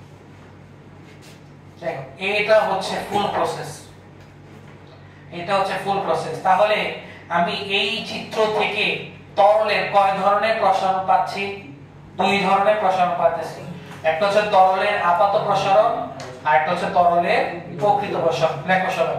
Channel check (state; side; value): identical; both; correlation 1.00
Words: দেখো এটা হচ্ছে ফুল প্রসেস, এটা হচ্ছে ফুল প্রসেস। তাহলে আমি এই চিত্র থেকে তরলের কয় ধরনের প্রসারণ পাচ্ছি? দুই ধরনের প্রসারণ পাচ্ছি। একটা হচ্ছে তরলের আপাত প্রসারণ, আর একটা হচ্ছে তরলের প্রকৃত প্রসারণ। লেখো সবাই,